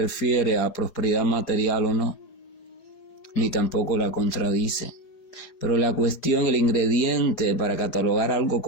a prosperidad material o no, ni tampoco la contradice. Pero la cuestión, el ingrediente para catalogar algo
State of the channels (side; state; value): right; late; 4.8 ms